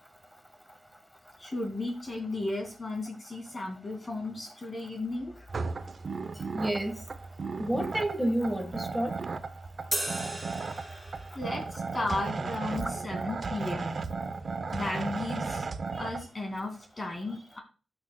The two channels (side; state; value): both; normal; correlation 0.91